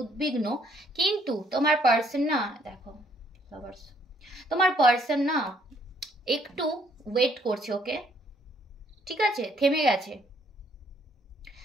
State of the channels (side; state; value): both; normal; correlation 0.67